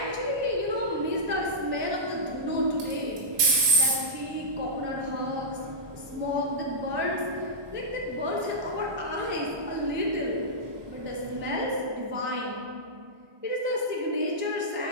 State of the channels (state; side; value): late; left; 1.2 ms